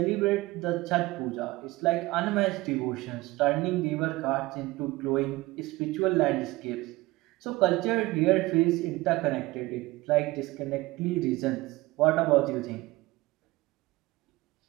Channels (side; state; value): left; quieter; 20.2 dB